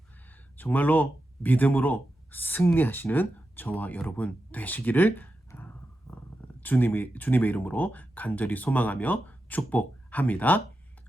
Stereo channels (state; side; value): normal; both; correlation 0.89